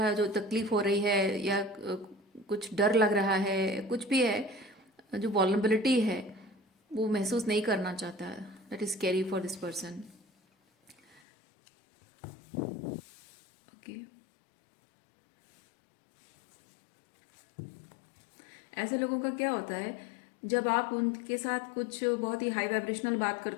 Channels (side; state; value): right; drops out; at 11.2 s